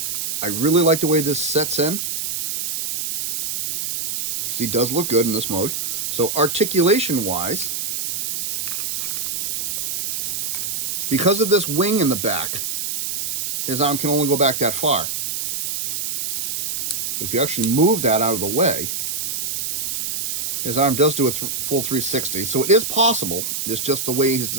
I really like the way this sets in. He does look good in this mode. So articulation-wise, because of this wing in the back, his arm can only go back that far. But if you actually move that out of the way, his arm does do a full 360. So it is possible. It's just the way he's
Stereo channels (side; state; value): right; noise; hiss, 2 dB below the sound